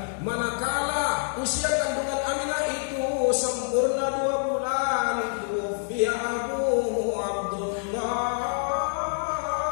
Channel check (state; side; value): silent; right; digital silence